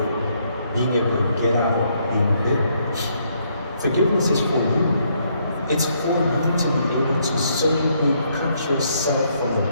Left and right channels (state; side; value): inverted; both; correlation -0.72